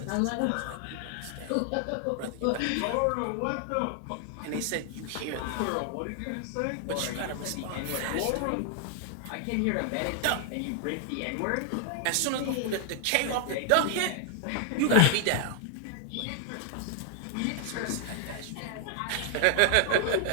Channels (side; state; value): both; different; correlation 0.00